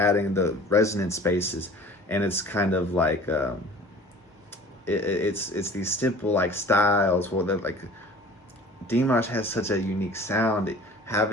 the resonant spaces, and it's kind of like it's these simple like styles. Well, they're like, Dimash has such a unique sound.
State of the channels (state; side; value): normal; both; correlation 0.45